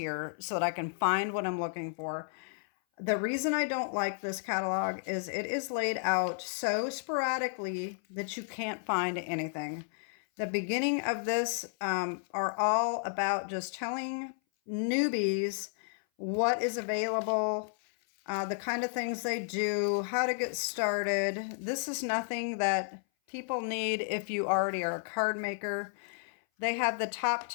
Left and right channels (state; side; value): silent; right; 56 dB below the other